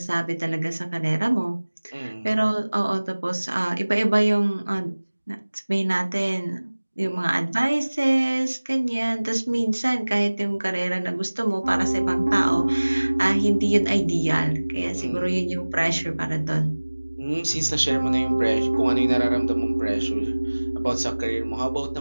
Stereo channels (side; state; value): both; inverted; correlation -1.00